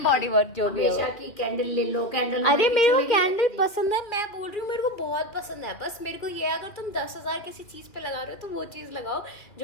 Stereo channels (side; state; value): right; late; 2.6 ms